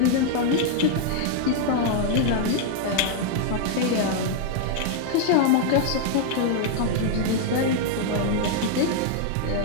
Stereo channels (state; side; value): different; both; correlation 0.00